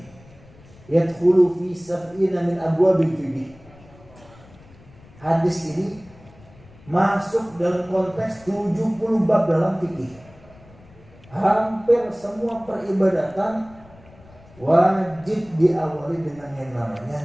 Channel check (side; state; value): left; noise; rumble, 24 dB below the sound